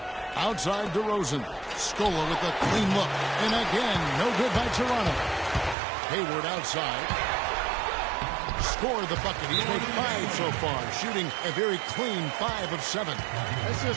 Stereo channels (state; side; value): drops out; left; at 5.8 s